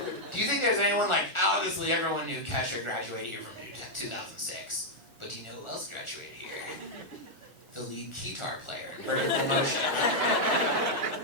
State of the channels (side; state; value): right; late; 1.4 ms